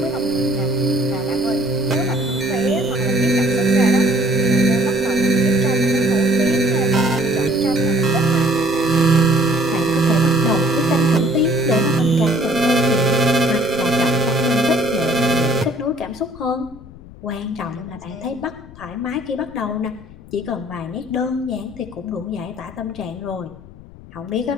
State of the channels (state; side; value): noise; left; rumble, 19 dB below the sound